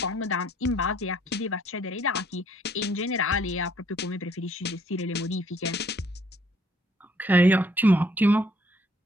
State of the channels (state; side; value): normal; both; correlation 0.64